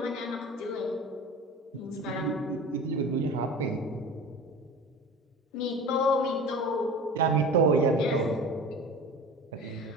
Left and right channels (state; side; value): normal; both; correlation 0.36